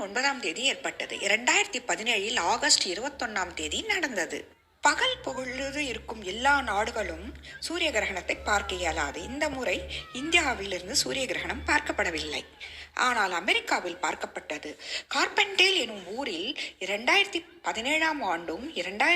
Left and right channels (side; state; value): both; identical; correlation 1.00